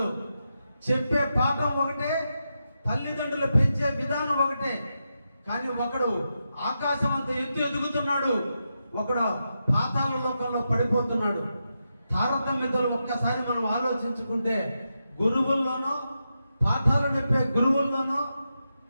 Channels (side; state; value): both; inverted; correlation -0.87